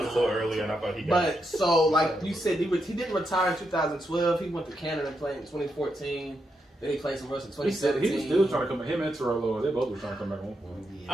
was a little earlier, and I thought he got. But so, like you said, he didn't retire in 2012. He went to Canada and played in 2014. Then he played some rest in he said 2017. he was still trying to come back. Him and Terrell, they both were trying to come back on for him.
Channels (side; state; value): both; normal; correlation 0.82